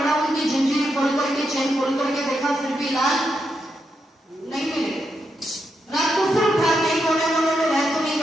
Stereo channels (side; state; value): both; normal; correlation 0.83